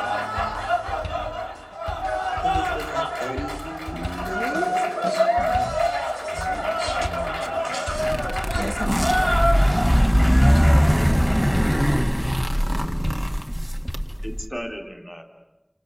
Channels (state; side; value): identical; both; correlation 1.00